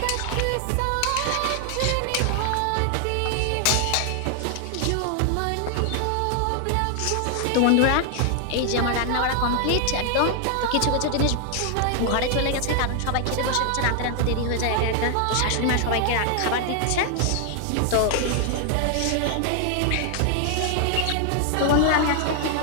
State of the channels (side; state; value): both; different; correlation 0.00